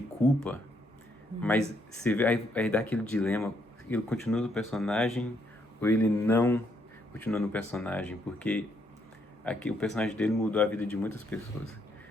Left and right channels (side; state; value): both; normal; correlation 0.73